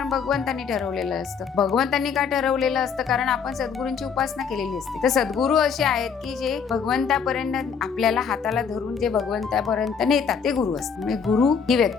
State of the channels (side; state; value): right; quieter; 6.4 dB